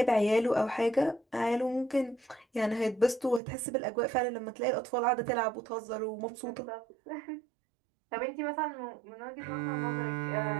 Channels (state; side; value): drops out; left; at 3.4 s